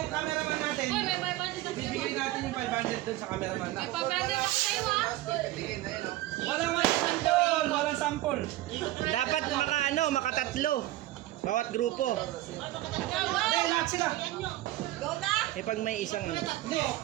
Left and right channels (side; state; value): left; quieter; 16.2 dB